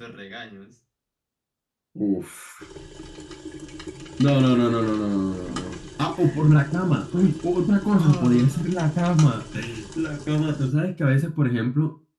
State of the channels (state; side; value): identical; both; correlation 1.00